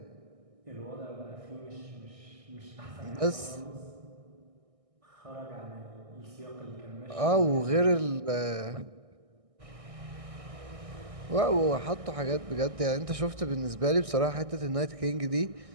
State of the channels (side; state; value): left; late; 1.6 ms